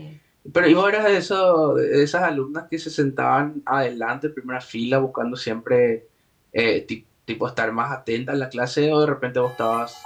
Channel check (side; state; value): both; identical; correlation 1.00